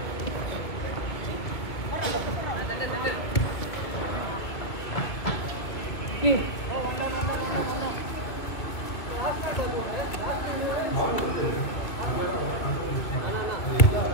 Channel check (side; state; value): right; late; 2.4 ms